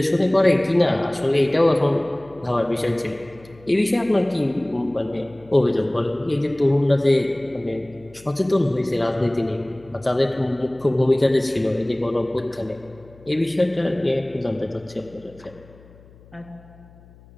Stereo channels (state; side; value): noise; left; hum, 25 dB below the sound